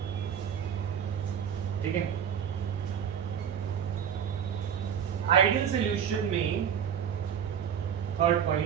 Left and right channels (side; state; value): left; quieter; 8.4 dB